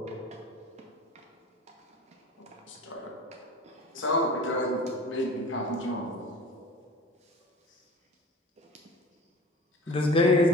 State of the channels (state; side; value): normal; both; correlation 0.39